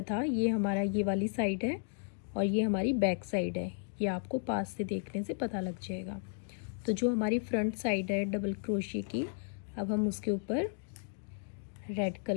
था ये हमारा ये वाली साइड है और ये हमारी बैक साइड है। ये आपको पास से देखने से पता लग जाएगा। तो जो हमारी फ्रंट साइड है डबल क्रोशिया की, अब हम उसके ऊपर रेड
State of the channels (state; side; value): silent; right; digital silence